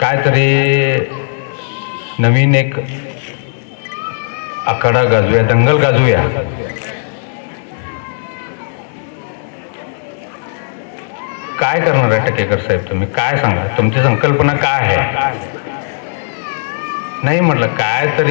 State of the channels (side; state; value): right; silent; digital silence